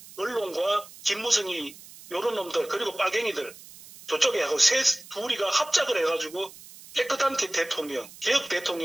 언론과 김무성이 요런 놈들 그리고 빨갱이들 저쪽에 하고 둘이가 합작을 해가지고 깨끗한 대통령, 개혁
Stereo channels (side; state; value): right; noise; hiss, 19 dB below the sound